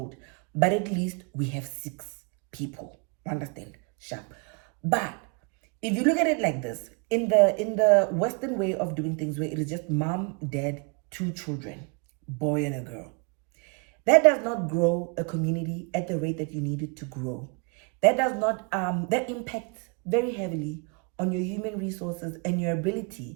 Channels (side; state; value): left; quieter; 33.9 dB